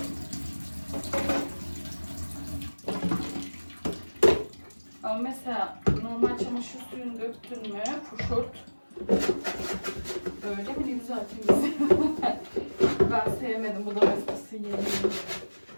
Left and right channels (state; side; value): inverted; both; correlation -1.00